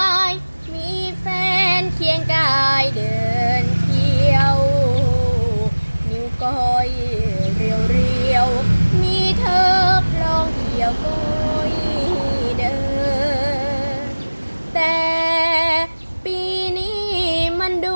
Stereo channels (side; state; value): both; inverted; correlation -1.00